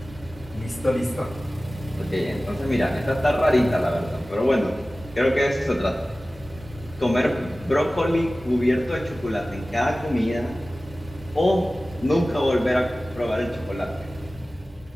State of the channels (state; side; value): normal; both; correlation 0.97